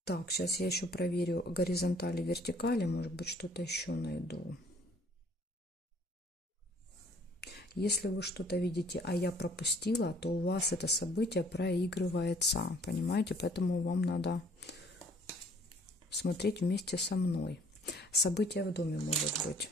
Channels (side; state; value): both; normal; correlation 0.58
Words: Так, сейчас я еще проверю горизонтали, вертикали, может быть, что-то еще найду. Если вы что-то видите, а я пропустила, то у вас это событие проигрывается, понимаете? Поэтому вам надо смотреть вместе со мной. Событие в доме может быть